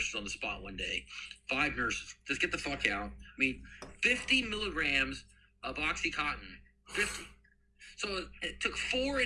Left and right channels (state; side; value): identical; both; correlation 1.00